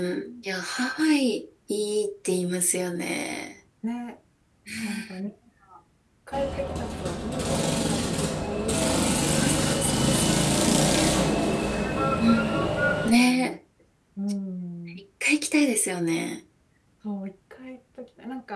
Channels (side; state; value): both; identical; correlation 1.00